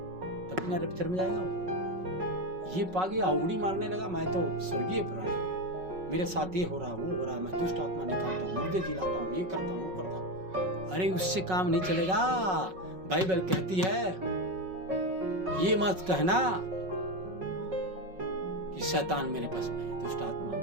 तभी ना रैप्चर में जाएगा वो। ये पा गया, उंगली मारने लगा मैं तो स्वर्गीय प्राणी, मेरे साथ ये हो रहा, वो हो रहा, मैं दुष्ट आत्मा निकालता हूँ, मुर्दे जिलाता हूँ, ये करता हूँ, वो करता हूँ। अरे उससे काम नहीं चलेगा। बाइबल कहती है ये मत कहना कि शैतान मेरे पास में है, दुष्ट आत्मा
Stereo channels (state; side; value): late; left; 5.4 ms